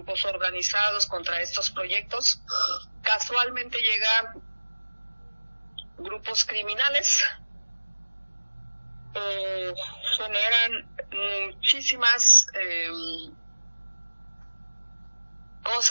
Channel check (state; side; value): inverted; both; correlation -1.00